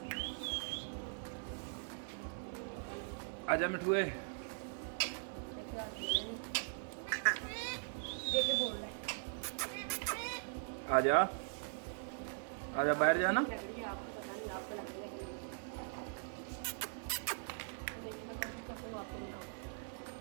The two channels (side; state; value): left; silent; digital silence